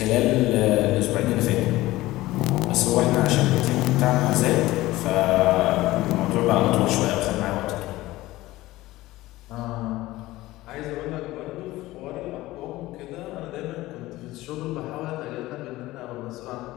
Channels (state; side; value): quieter; right; 17.7 dB